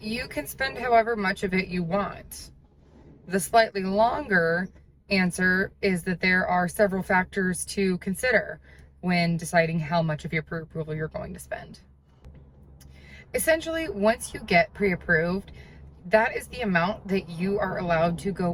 can spend however much of it you want. The slightly longer answer is that there are several factors to consider when deciding how much of your pre-approval you're going to spend. Essentially, once you get pre-approved, that is the amount that you are allowed to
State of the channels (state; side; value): identical; both; correlation 1.00